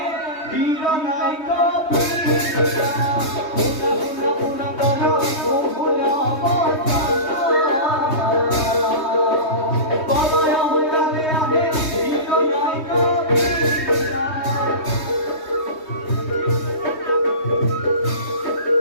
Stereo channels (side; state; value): right; late; 3.2 ms